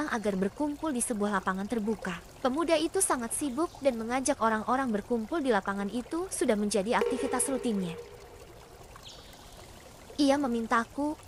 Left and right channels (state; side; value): identical; both; correlation 1.00